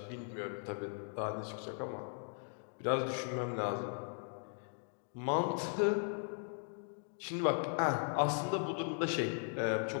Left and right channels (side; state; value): right; silent; 52 dB below the other